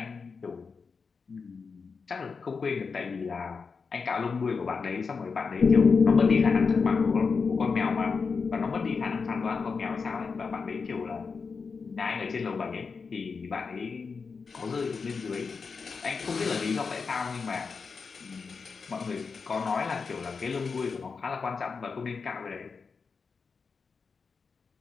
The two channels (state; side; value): quieter; right; 5.1 dB